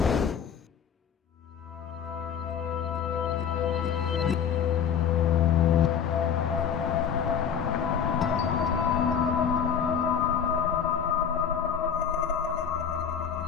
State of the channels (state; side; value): quieter; right; 7.7 dB